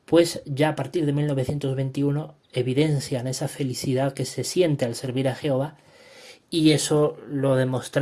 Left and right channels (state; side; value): identical; both; correlation 1.00